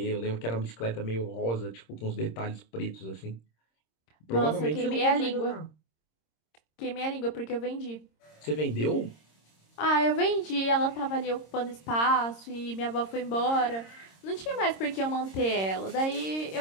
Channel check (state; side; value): late; right; 26 ms